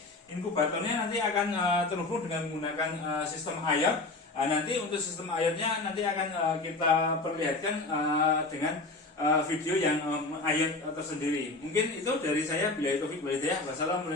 inkubatornya nanti akan terhubung dengan menggunakan sistem IoT. Nanti untuk sistem IoT-nya nanti akan kita perlihatkan dengan video yang IoT tersendiri. Mungkin itu dari saya. Billahi taufik wal hidayah.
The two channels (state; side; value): quieter; right; 3.2 dB